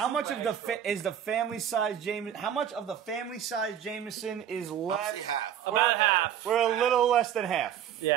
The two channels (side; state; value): left; quieter; 9.6 dB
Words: much of is the family size Jameson? How much of the family size Jameson is I'd left? say half. About half. We're a little less than half.